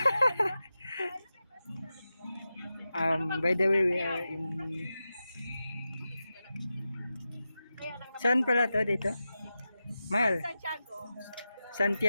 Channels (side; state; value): both; inverted; correlation -0.92